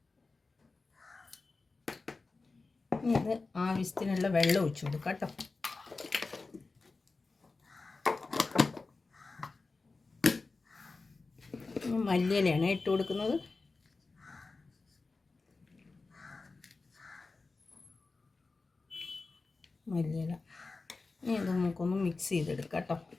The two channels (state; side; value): quieter; right; 3.8 dB